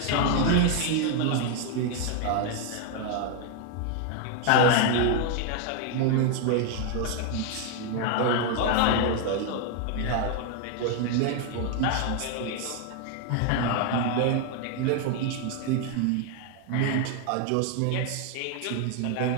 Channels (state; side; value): different; both; correlation 0.01